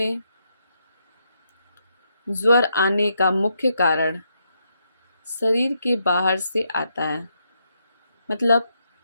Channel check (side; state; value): both; inverted; correlation -0.79